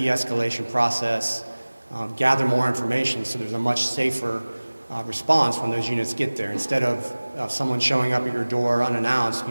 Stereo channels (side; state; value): both; inverted; correlation -1.00